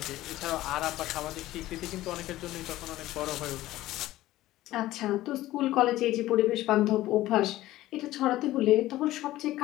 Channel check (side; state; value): right; quieter; 15.8 dB